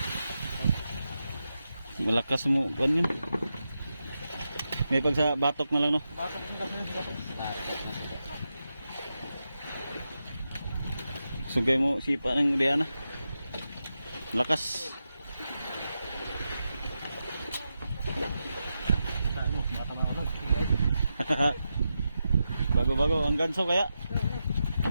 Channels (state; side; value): inverted; both; correlation -0.89